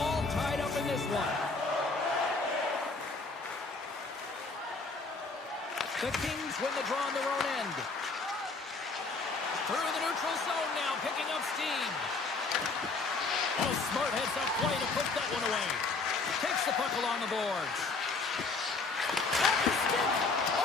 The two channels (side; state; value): right; quieter; 3.9 dB